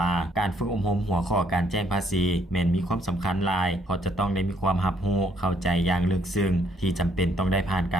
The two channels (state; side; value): normal; both; correlation 0.68